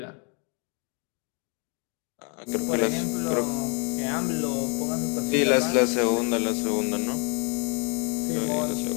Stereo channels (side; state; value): right; quieter; 32.0 dB